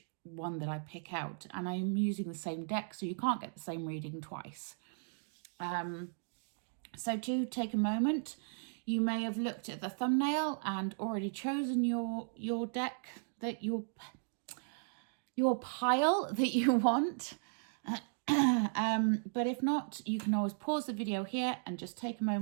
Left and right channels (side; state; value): left; silent; digital silence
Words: one that I pick out. And I'm using the same deck, so you can't get the same reading twice. So do take a moment. You may have looked at the thumbnail and already chosen your deck, that your pile that you want. But if not, you can always pause the video here and just take a